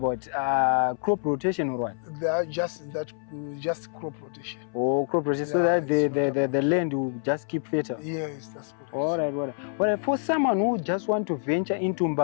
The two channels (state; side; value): silent; right; 60 dB below the other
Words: crop rotation or what? They are just crop rotation. Oh, crop rotation, so that the land will just keep fertile. Yes, that's correct. All right. For someone who just want to venture into